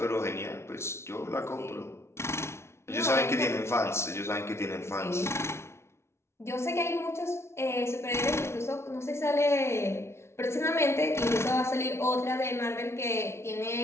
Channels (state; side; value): late; right; 0.13 ms